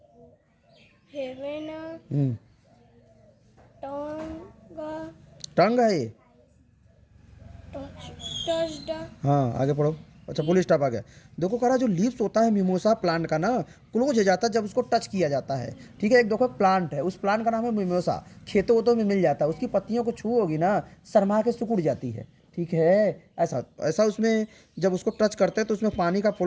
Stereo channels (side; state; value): both; identical; correlation 1.00